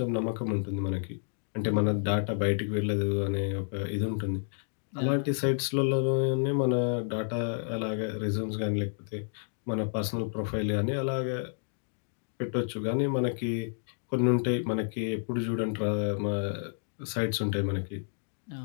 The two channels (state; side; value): silent; right; digital silence